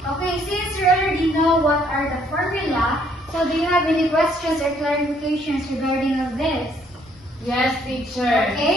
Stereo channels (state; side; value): normal; both; correlation 0.66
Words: since you already know what are the formula, so do you have any questions or clarifications regarding of this? Yes, teacher.